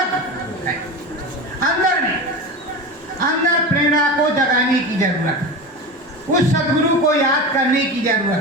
है। अंदर प्रेरणा को जगाने की जरूरत है, उस सदगुरु को याद करने की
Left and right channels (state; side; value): normal; both; correlation 0.27